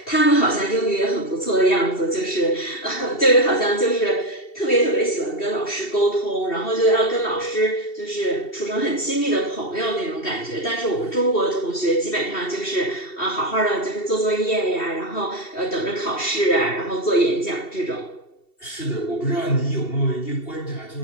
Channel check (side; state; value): right; late; 2.7 ms